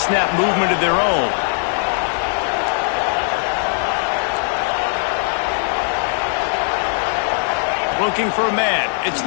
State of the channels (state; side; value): silent; right; digital silence